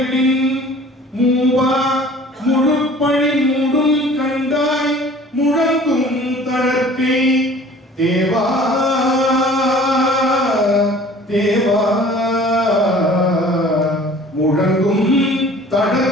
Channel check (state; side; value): normal; both; correlation 0.48